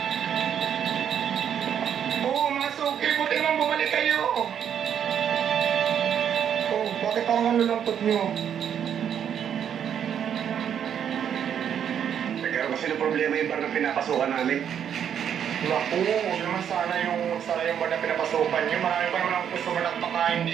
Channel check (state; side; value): quieter; left; 8.8 dB